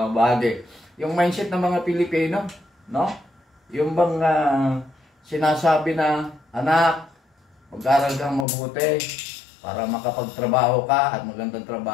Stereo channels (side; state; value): right; drops out; at 8.5 s